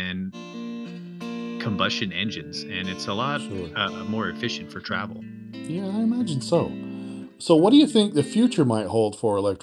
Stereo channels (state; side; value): identical; both; correlation 1.00